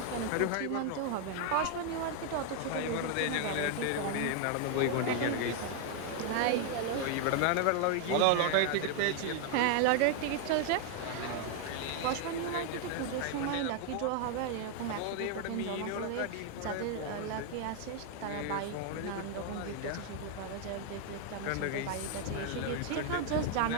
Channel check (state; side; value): different; both; correlation 0.00